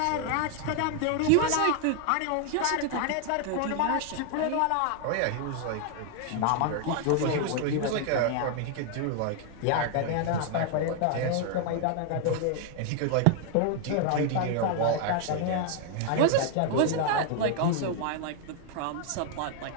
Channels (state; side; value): different; both; correlation 0.00